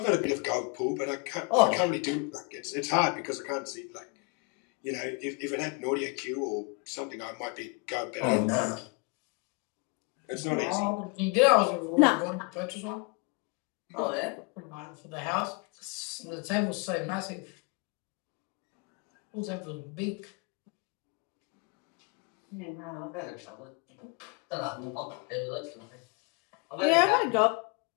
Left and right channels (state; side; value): quieter; right; 31.3 dB